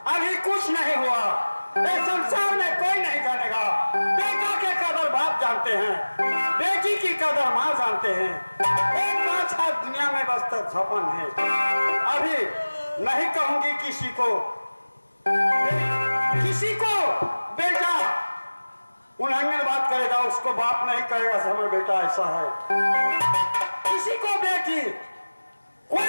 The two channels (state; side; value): inverted; both; correlation -1.00